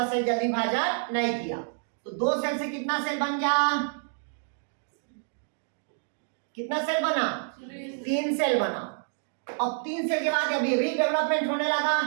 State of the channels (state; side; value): silent; left; 59 dB below the other